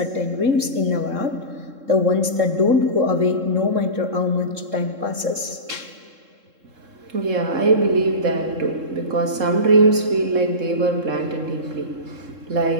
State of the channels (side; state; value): left; late; 3.7 ms